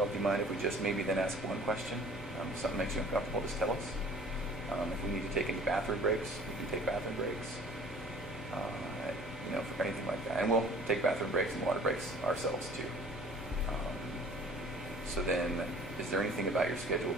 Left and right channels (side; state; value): left; noise; hum, 18 dB below the sound